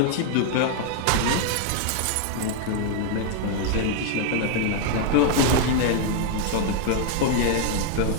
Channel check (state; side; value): different; both; correlation 0.00